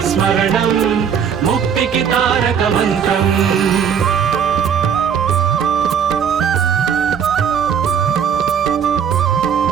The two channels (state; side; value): quieter; left; 7.7 dB